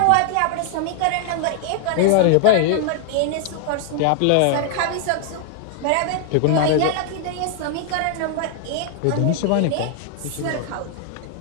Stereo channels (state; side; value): different; both; correlation 0.00